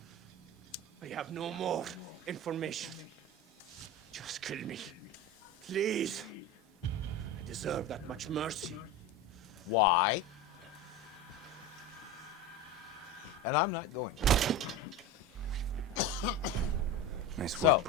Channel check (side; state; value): both; normal; correlation 0.25